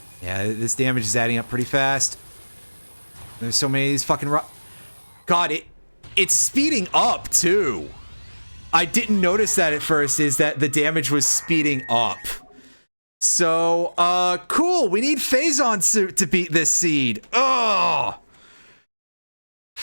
Yeah, this damage is adding up pretty fast. There's so many of these fucking God, it's speeding up, too. I didn't notice that at first, is that the damage was speeding up. So, cool. We need Phazon suit to beat this seed. Ugh.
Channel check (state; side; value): inverted; both; correlation -1.00